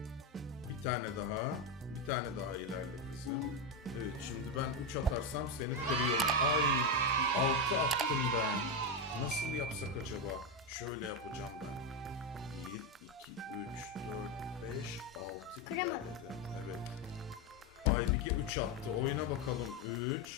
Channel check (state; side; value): normal; both; correlation 0.09